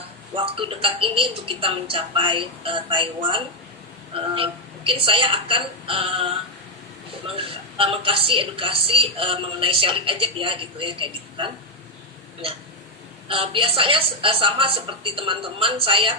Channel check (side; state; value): both; normal; correlation 0.03